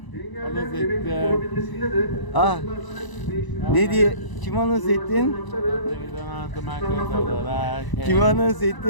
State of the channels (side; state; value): right; late; 1.0 ms